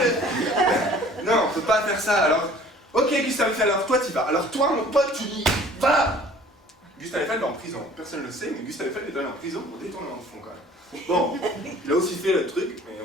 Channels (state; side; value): normal; both; correlation 0.51